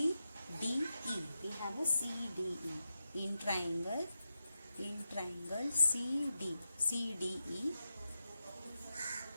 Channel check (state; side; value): inverted; both; correlation -0.90